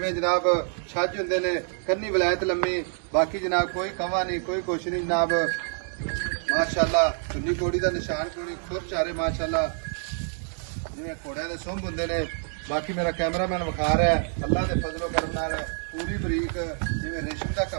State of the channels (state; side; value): silent; left; 60 dB below the other